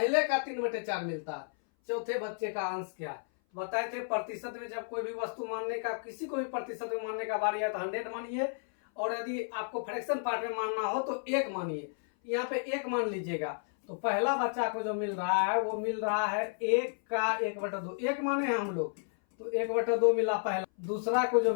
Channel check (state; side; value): silent; right; 56 dB below the other